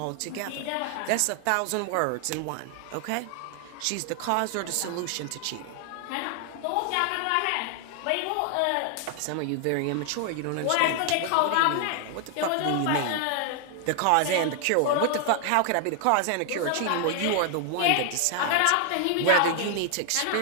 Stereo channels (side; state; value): both; different; correlation 0.00